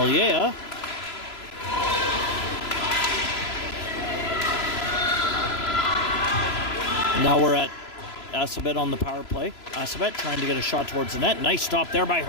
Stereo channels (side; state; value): right; late; 3.0 ms